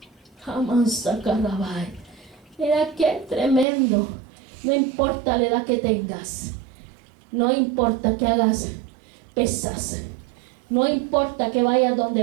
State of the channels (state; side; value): drops out; left; at 3.7 s